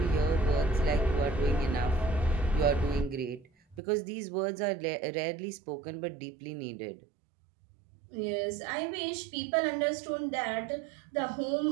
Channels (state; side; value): drops out; left; at 3.8 s